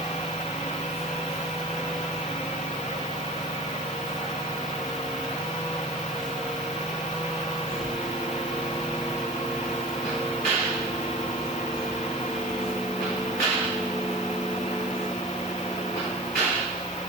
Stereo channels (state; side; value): normal; both; correlation 0.38